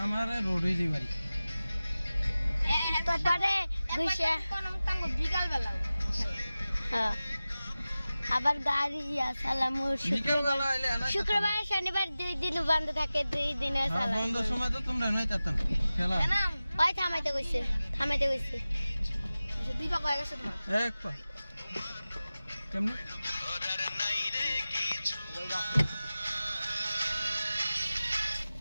আমার রোড হয়ে যাই বাড়ি তারপরে গুইসা কোন তাঙ্গ বিকাল বেলা হ্যাঁ আবার গাড়ি সালাম বিকেল বেলা আইলে না শুক্রবার শনিবার 2 দিন বন্ধ থাকে 2 দিনের সালাম বন্ধ সময় তো তোমরা নয় তাতেন খেলা না ওই থামাইতে কইছে দুই বাক্য হয়ে গেছে তোমার এক পা কেমনে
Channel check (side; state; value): both; inverted; correlation -0.96